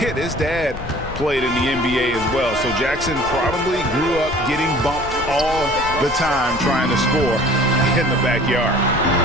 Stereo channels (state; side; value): noise; left; rumble, 12 dB below the sound